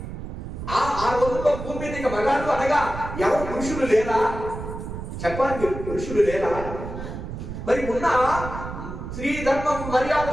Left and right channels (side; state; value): right; noise; rumble, 8 dB below the sound